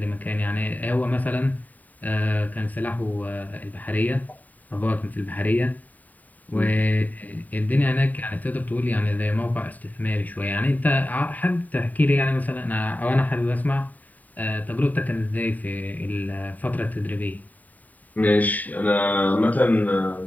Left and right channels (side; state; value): right; late; 0.078 ms